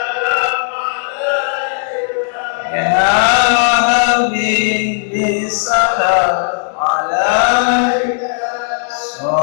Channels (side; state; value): right; silent; digital silence